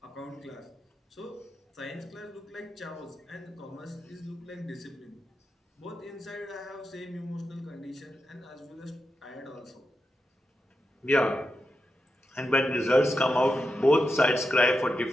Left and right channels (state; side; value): normal; both; correlation 0.88